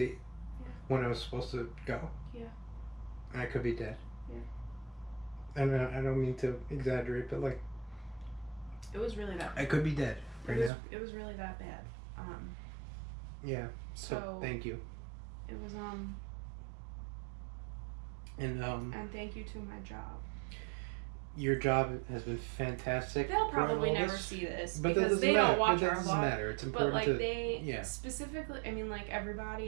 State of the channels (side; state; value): left; drops out; at 10.7 s